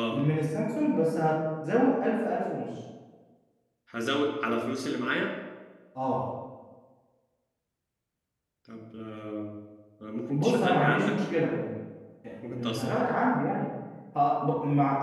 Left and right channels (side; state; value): both; identical; correlation 1.00